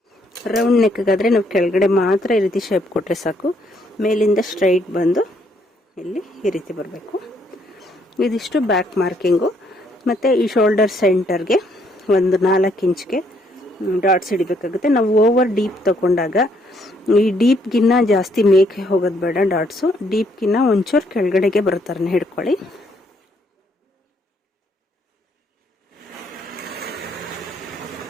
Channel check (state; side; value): normal; both; correlation 0.69